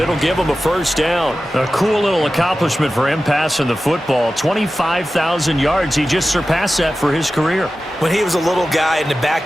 give him a first down. A cool little accomplishment for him passing the football. 25,000 yards. He just surpassed that for his career. When he was a little guy in the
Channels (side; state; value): both; normal; correlation 0.94